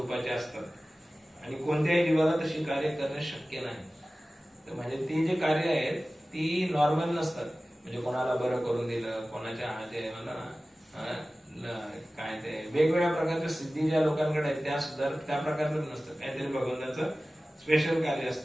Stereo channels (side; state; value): both; normal; correlation 0.97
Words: असतात आणि कोणत्याही जीवाला तशी कार्य करणे शक्य नाही. तर म्हणजे ती जी कार्य आहेत ती नॉर्मल नसतात. म्हणजे कोणाला बरं करून दिलं, कोणाच्या हाते काय ते वेगवेगळ्या प्रकारच्या सिद्धी ज्या लोकांकडे आहेत त्या सुद्धा त्या प्रकारचं नसतं. काहीतरी भगवंताचं स्पेशल कार्य